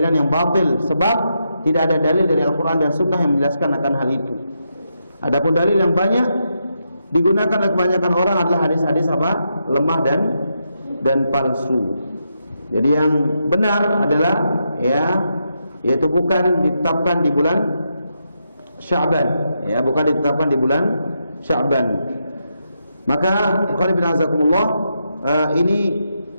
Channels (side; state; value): both; inverted; correlation -0.83